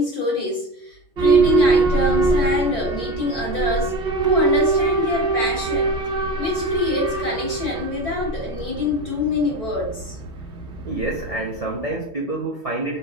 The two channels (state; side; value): late; right; 3.2 ms